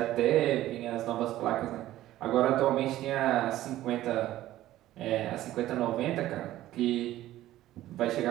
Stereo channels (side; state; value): left; quieter; 14.5 dB